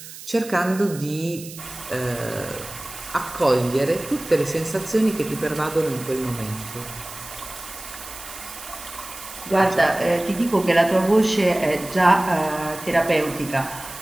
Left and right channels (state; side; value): noise; right; hiss, 14 dB below the sound